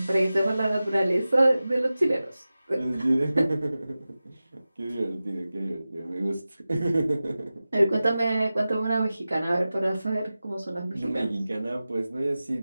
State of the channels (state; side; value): inverted; both; correlation -0.95